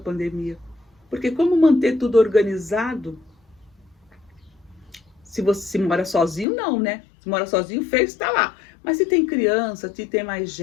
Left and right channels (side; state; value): right; drops out; at 6.5 s